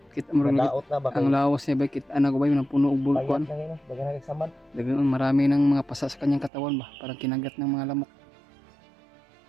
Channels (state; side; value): drops out; left; at 6.5 s